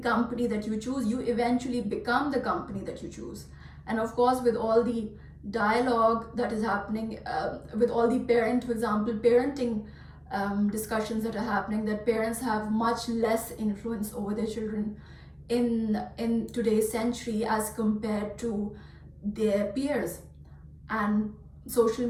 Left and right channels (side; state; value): both; identical; correlation 1.00